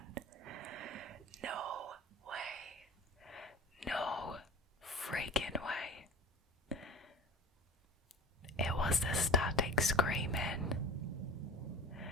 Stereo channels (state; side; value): normal; both; correlation 0.38